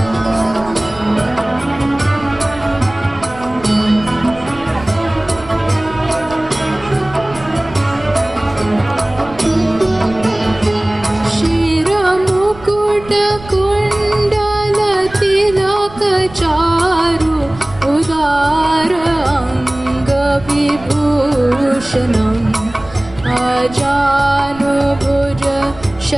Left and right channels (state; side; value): noise; right; rumble, 18 dB below the sound